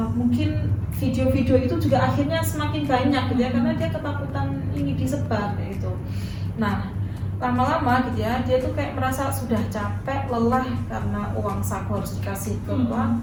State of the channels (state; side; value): identical; both; correlation 1.00